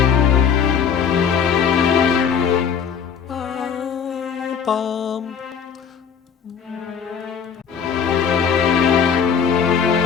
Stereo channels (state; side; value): quieter; right; 7.2 dB